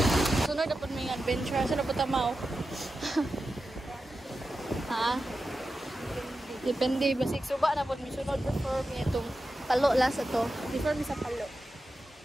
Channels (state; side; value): normal; both; correlation 0.91